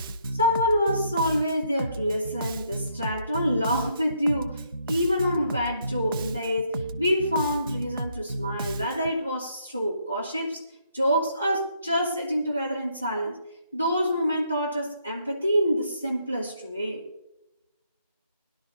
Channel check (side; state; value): both; inverted; correlation -0.72